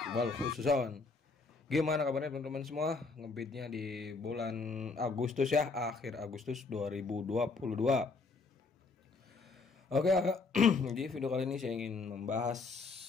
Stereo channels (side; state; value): right; quieter; 4.1 dB